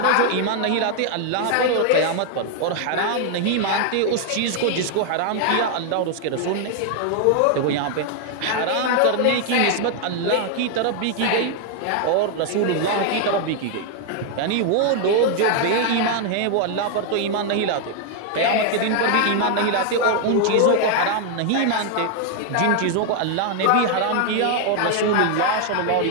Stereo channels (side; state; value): both; different; correlation 0.00